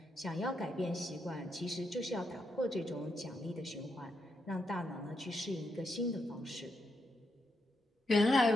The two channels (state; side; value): normal; both; correlation 0.82